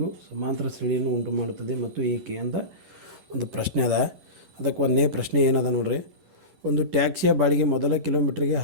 ಸಮಾಂತರ ಶ್ರೇಣಿಯನ್ನು ಉಂಟು ಮಾಡುತ್ತದೆ ಮತ್ತು ಏಕೆ ಅಂತ ಒಂದು ಪ್ರಶ್ನೆ ಅದ. ಅದಕ್ಕೆ ಒಂದನೇ ಪ್ರಶ್ನೆ ಏನದ ನೋಡ್ರಿ. ಒಂದು ಟ್ಯಾಕ್ಸಿಯ ಬಾಡಿಗೆ ಮೊದಲ ಕಿಲೋಮೀಟ್ರಿಗೆ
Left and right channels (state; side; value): late; left; 11 ms